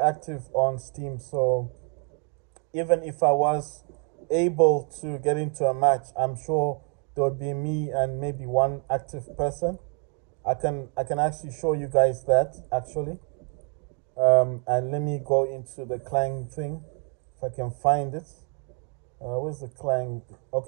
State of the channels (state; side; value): quieter; left; 39.9 dB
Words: on Steam, so even if I was able to get into a match, I'm sure there would be me and maybe one active person. I can actually show you guys that actually. And let me go into the Clang thing if I can find it. Where's the Clang?